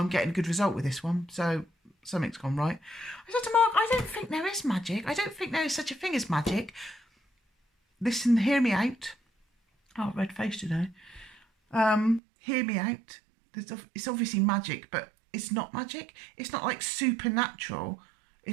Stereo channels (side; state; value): left; drops out; at 12.2 s